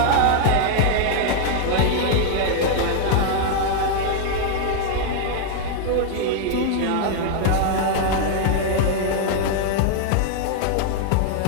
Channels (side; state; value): both; different; correlation 0.00